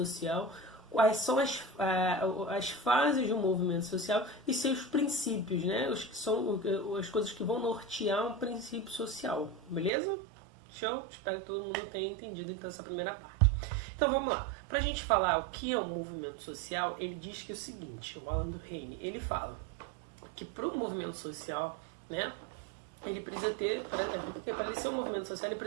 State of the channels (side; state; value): left; drops out; at 9.9 s